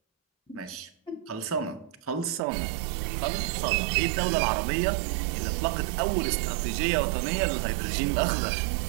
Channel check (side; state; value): left; drops out; at 2.4 s